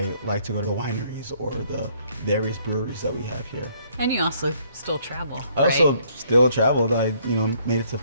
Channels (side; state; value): both; inverted; correlation -0.65